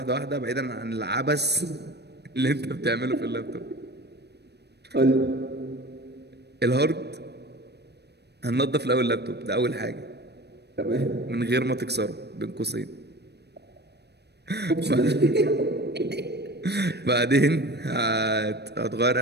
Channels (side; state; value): left; late; 0.48 ms